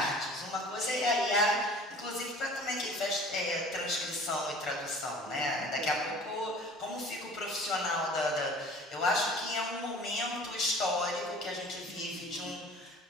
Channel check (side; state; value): both; normal; correlation 0.46